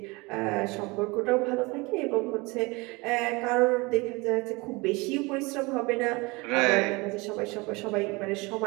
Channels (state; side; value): quieter; left; 25.2 dB